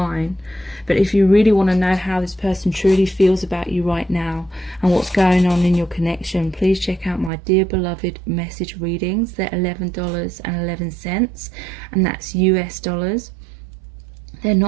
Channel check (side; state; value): left; drops out; at 7.3 s